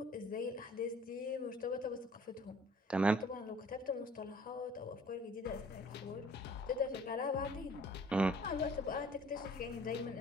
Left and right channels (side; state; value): both; normal; correlation 0.53